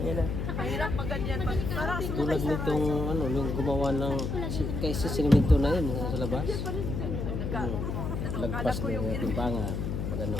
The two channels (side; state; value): left; noise; hum, 2 dB below the sound